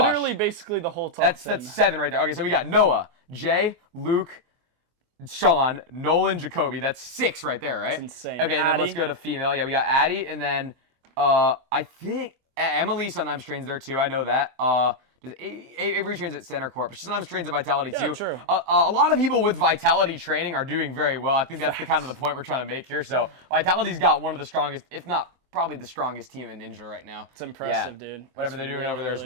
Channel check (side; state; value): left; late; 24 ms